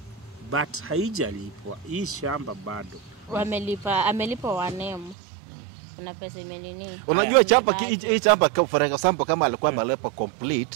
But haijalipwa. Hii shamba bado. Amelipa wanemu. Kuna pesa imenini. Unajua hii chamba for example kama alikuwa amelipa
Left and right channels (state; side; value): drops out; left; at 5.2 s